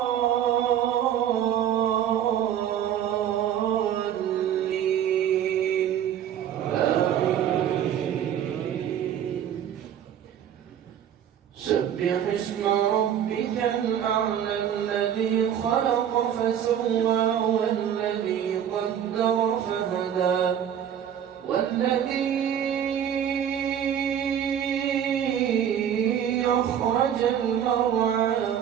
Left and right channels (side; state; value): left; quieter; 9.5 dB